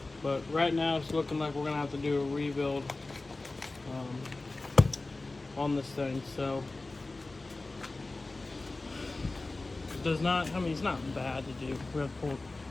But right now it's looking like we're gonna have to do a rebuild on this thing. So it does not, I mean, it's not bad to do. We have to pull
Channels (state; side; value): quieter; right; 3.2 dB